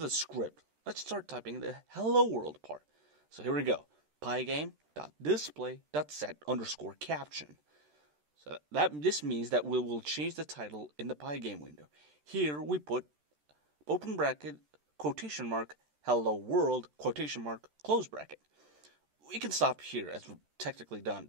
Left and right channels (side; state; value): left; late; 13 ms